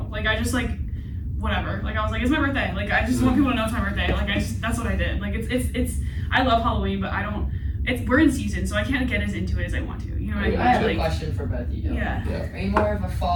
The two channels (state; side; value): identical; both; correlation 1.00